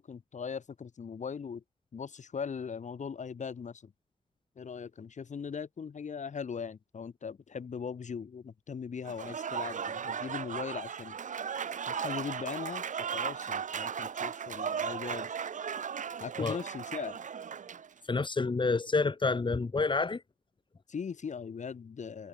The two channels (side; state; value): both; normal; correlation 0.32